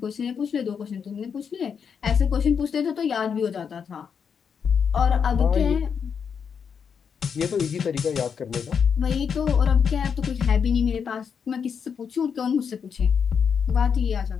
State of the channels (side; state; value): right; quieter; 6.8 dB